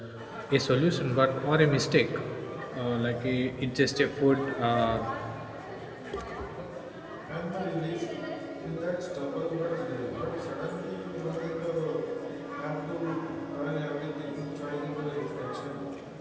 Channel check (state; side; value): identical; both; correlation 1.00